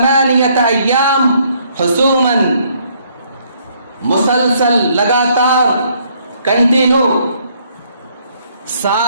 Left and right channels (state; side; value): inverted; both; correlation -0.67